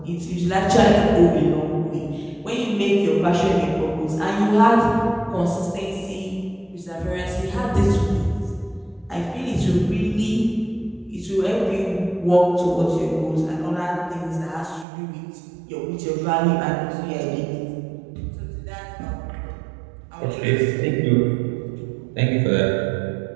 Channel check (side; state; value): left; drops out; at 14.9 s